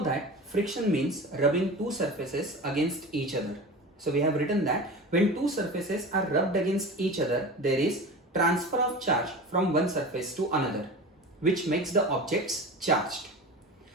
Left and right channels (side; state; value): both; normal; correlation 0.32